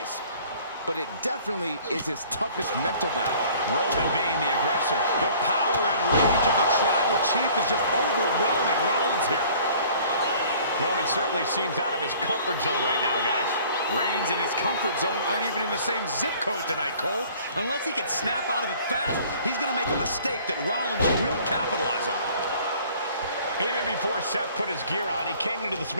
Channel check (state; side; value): inverted; both; correlation -0.52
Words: but it definitely is his toughest mental battle. Roman being the aggressor. The power and rage of the Tribal Chief is just overwhelming Rollins here. Roman certainly seems out of his comfort zone right now, guys. Reigns and his comfort zone aren't even in the same zip code tonight, Cole. Unless he can snap out of it fast, he's going to make a mistake that Rollins will capitalize on. Even before Seth put his gear on, he came into this